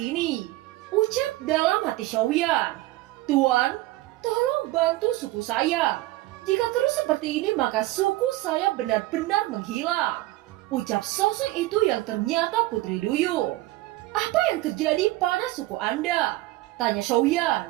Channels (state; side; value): quieter; left; 18.0 dB